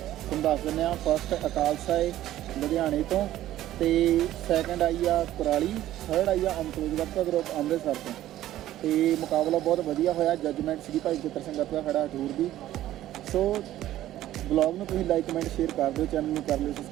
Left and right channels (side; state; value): left; quieter; 13.7 dB